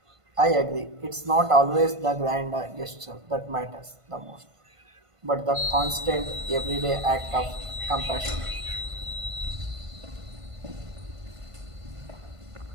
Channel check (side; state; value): left; late; 1.5 ms